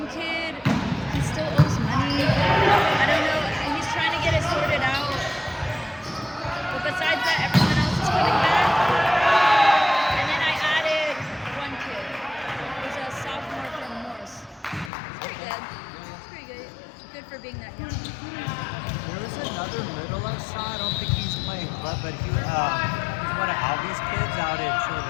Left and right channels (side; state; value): right; drops out; at 14.9 s